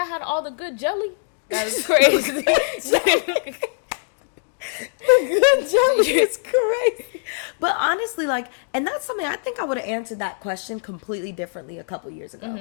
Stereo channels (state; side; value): silent; right; 60 dB below the other